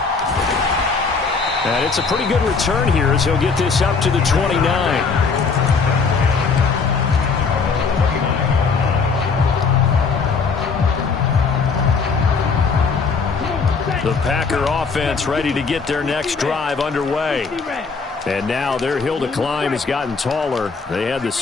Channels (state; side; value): quieter; right; 4.9 dB